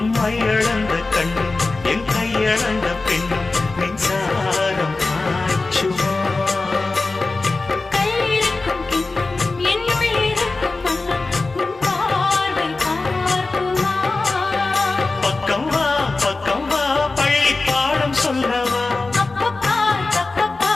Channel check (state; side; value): quieter; right; 3.5 dB